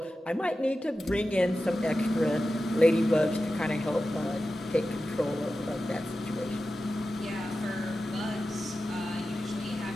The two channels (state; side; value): normal; both; correlation 0.93